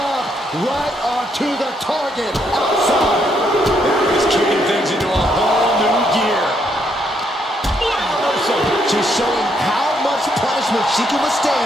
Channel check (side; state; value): both; normal; correlation 0.74